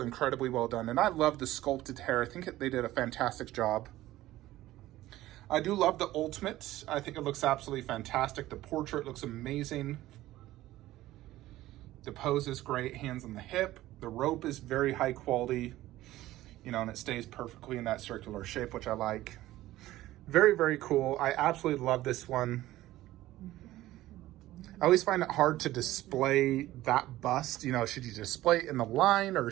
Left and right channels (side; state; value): left; quieter; 15.7 dB